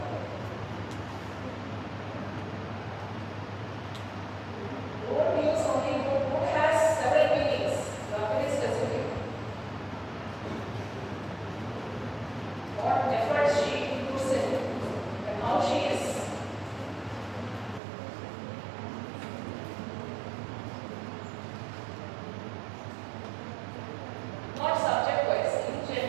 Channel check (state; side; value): drops out; left; at 17.8 s